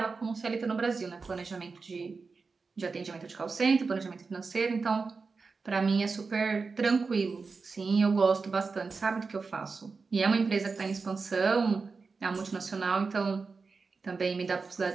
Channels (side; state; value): left; quieter; 4.5 dB